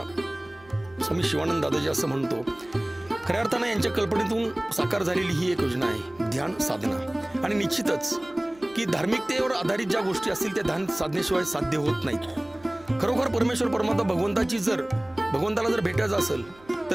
स्वामी शिवानंद दादाजी असं म्हणतो. खऱ्या अर्थानं यांच्या कल्पनेतून साकार झालेली ही एक योजना आहे ध्यान साधना. आणि निश्चितच की धार्मिकतेवर आधारित ज्या गोष्टी असतील त्या ध्यान साधनेशिवाय साध्य होत नाहीत. खरोखर परमेश्वर परमात्मा भगवंताला जर भेटायचं असेल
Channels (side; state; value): right; noise; hum, 26 dB below the sound